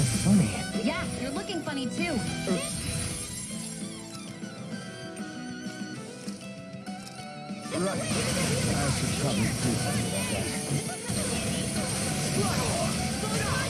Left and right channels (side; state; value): both; identical; correlation 1.00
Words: funny. Yeah, you're looking funny too. Right. I should probably do something about that.